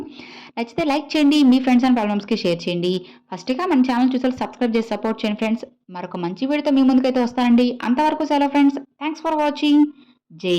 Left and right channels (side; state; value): both; identical; correlation 1.00